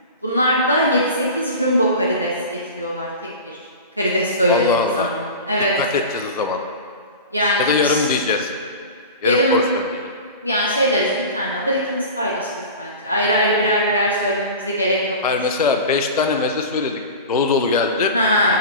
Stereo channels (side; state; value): both; inverted; correlation -0.32